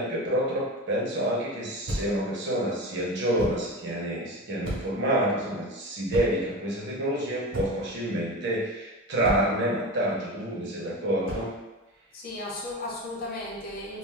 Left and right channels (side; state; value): both; normal; correlation 0.27